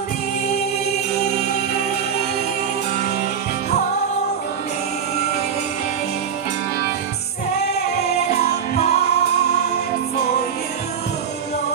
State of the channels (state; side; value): quieter; left; 7.5 dB